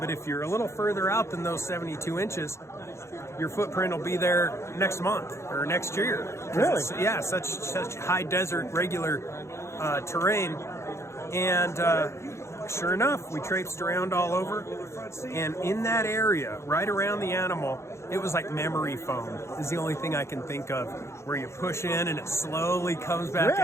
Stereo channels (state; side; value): late; right; 0.13 ms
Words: if you're a little further out than those 72 inches, your footprint will be there next month or next year. Really? Yeah, such high desert, regular terrain. And sure enough, we traipsed around all over. And in that area, right around the animal, it was like memory foam is the only thing I can think of, where you push in and it slowly comes back Really?